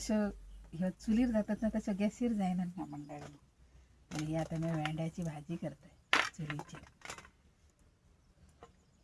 ह्या चुलीर जातात ना, तसं गॅसीर जायना ना मंडळी. आणि ही आता मी भेंड्याची भाजी करते चुलीची.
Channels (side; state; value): both; identical; correlation 1.00